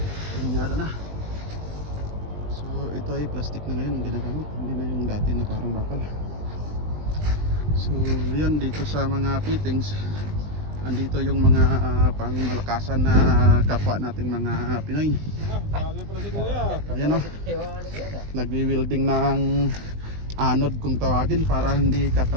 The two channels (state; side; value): late; left; 20 ms